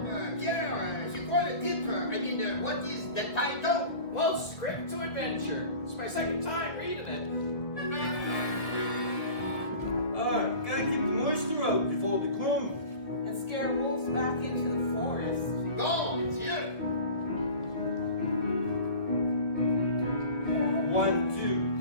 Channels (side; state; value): right; late; 1.7 ms